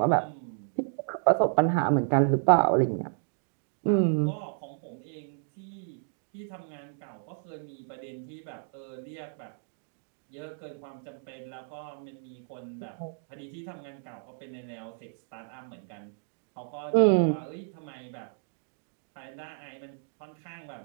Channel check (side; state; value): left; silent; digital silence